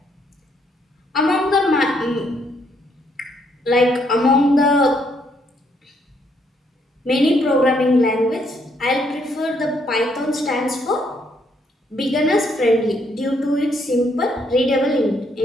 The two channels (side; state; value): both; normal; correlation 0.72